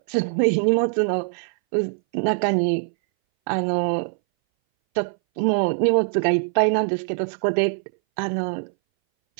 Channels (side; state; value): left; silent; 61 dB below the other